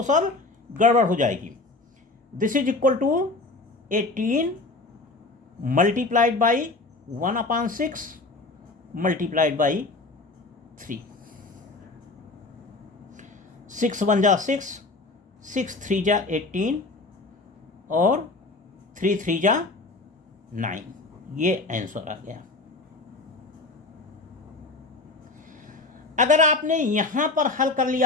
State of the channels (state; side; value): quieter; right; 3.3 dB